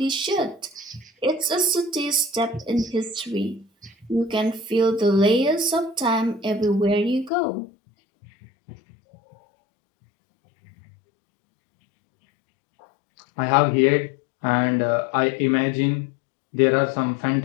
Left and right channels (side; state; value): right; drops out; at 7.3 s